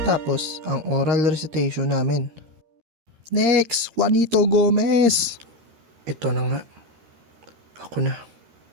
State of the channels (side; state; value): left; late; 13 ms